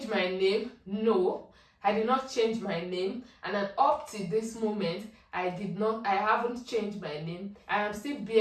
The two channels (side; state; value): both; identical; correlation 1.00